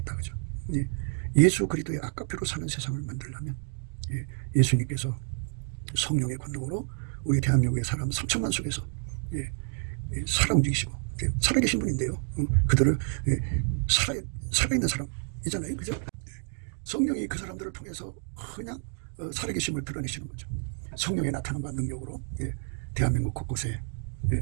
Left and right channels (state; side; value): silent; left; 55 dB below the other